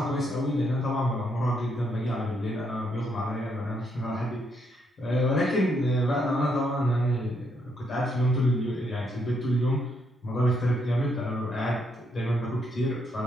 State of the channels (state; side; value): normal; both; correlation 0.75